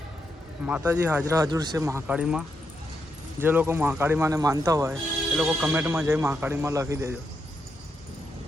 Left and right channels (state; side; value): normal; both; correlation 0.82